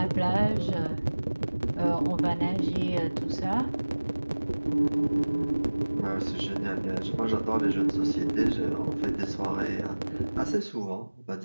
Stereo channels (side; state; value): both; inverted; correlation -1.00